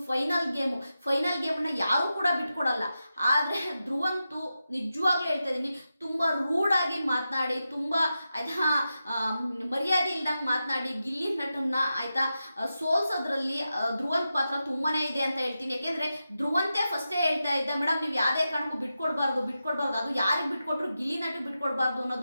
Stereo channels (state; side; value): inverted; both; correlation -0.90